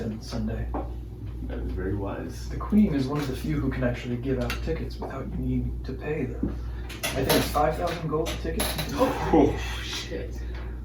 on Sunday. That is very wise. The queen is one of the few who can actually give out tickets without you needing to pay them. I think it's 5,000 gold a ticket. Oh, Shit.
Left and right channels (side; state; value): both; identical; correlation 1.00